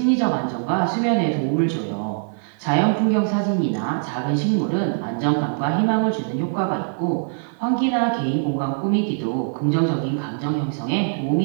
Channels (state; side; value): silent; left; 57 dB below the other